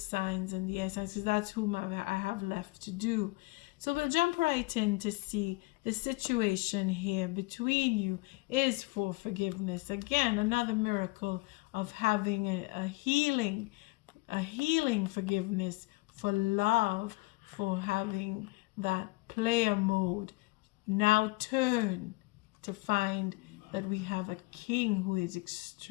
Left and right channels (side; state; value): right; quieter; 24.2 dB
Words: and the air signs, because that's whom I have left to do. So we'll jump right in to see the situation here between you is for forgiveness. Again, another miracle of having a healing forgiveness, for love, for having that player mode now turn to find that we have a king who is